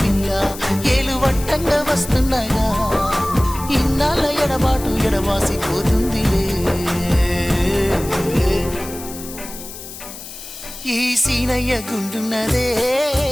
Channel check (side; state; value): left; noise; hiss, 13 dB below the sound